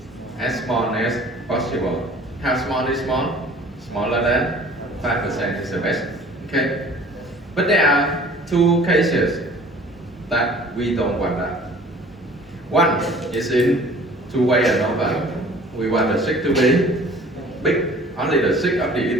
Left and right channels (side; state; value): both; normal; correlation 0.49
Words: as small as possible. How small is small? Smaller than 5% is the best. Okay. But there are two cases that we don't want that. One is in two-way ANOVA. We want the sig to be big, only the sig of the